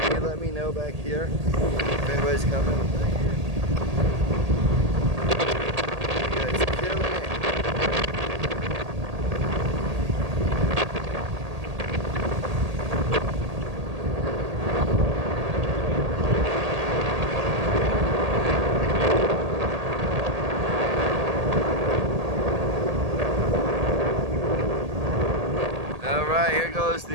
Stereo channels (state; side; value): late; left; 1.8 ms